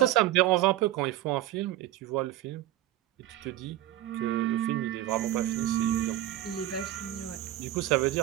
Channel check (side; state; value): left; quieter; 14.2 dB